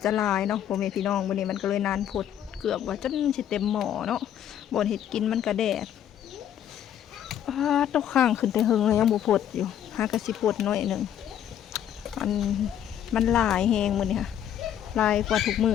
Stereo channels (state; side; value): quieter; right; 10.1 dB